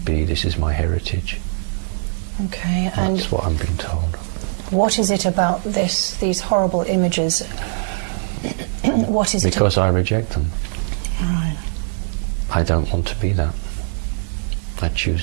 be. This is my heritage. Okay, and that's what I'm being told. What is it about these horrible images? What is it? Because I reject them. Right. I don't want to be that. I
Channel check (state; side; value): silent; left; 65 dB below the other